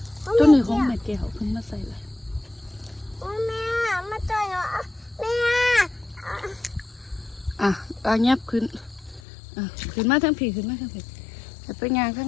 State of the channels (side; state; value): right; drops out; at 9.2 s